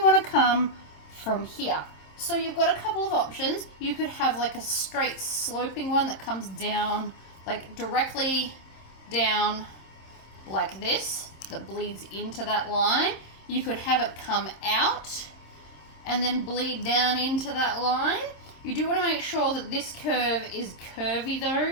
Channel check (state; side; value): late; right; 27 ms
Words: to come from here. So you've got a couple of options. You could have like a straight sloping one that comes down, like directly down like this, that bleeds into that line. You could have it come out and then bleed down into that line. You do want to make sure that this curve is curvy though.